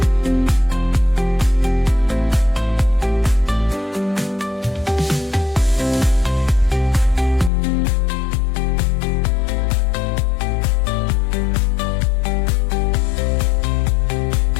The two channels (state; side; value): drops out; right; at 7.5 s